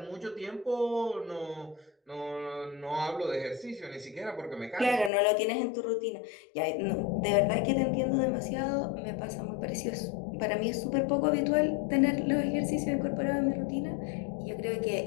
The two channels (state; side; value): drops out; right; at 5.1 s